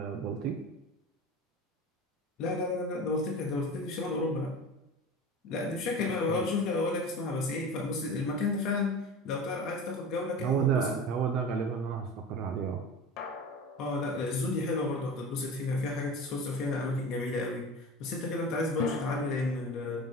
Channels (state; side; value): normal; both; correlation 0.32